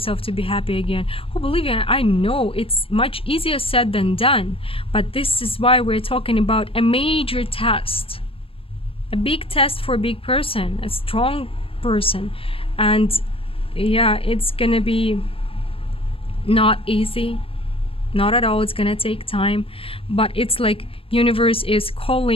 to be happy again. Oh, believe me, I know it's much easier said than done, but this is why we're talking about a major test, a big test for a big person, a strong person. And yeah, it's gonna be not easy, not at all. It's gonna take time, but it's like universe is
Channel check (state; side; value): late; right; 0.27 ms